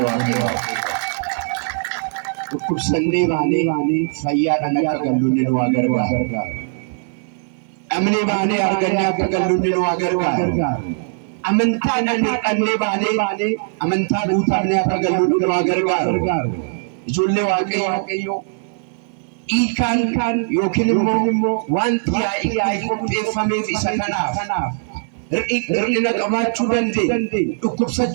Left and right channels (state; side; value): silent; left; 64 dB below the other